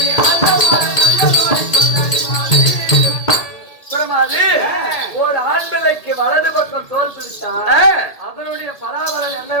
ஒரு ஆண் பிள்ளைக்கு வலது பக்கம் தோல் பிடித்தார். அதனுடைய பலாபலன்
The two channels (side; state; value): right; late; 1.8 ms